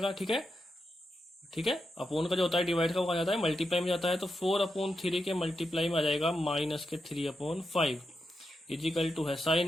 ठीक है, ठीक है, अपोन का जो होता है डिवाइड का वो जाता है मल्टीप्लाई में जाता है। तो 4/3 के मल्टीप्लाई में आ जाएगा माइनस के 3/5 इज इक्वल टू है साइन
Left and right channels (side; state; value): both; normal; correlation 0.86